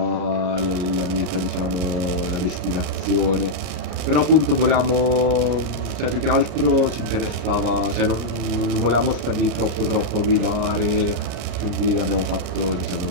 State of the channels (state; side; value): late; left; 33 ms